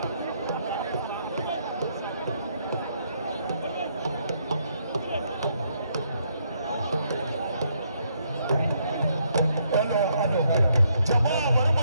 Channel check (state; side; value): inverted; both; correlation -0.73